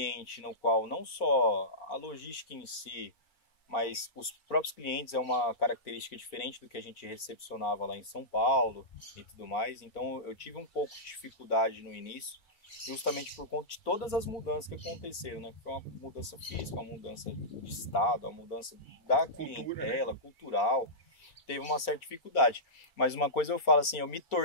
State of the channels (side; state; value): right; late; 2.3 ms